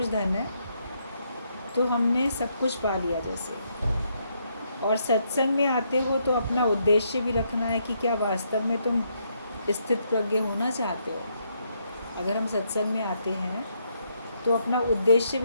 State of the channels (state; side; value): inverted; both; correlation -0.75